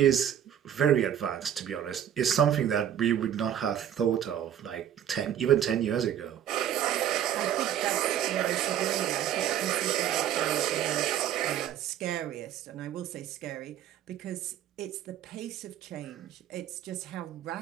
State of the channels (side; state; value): left; quieter; 10.2 dB